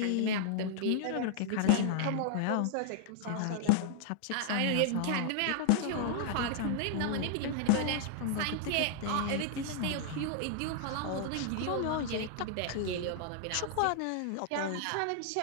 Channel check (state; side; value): different; both; correlation -0.01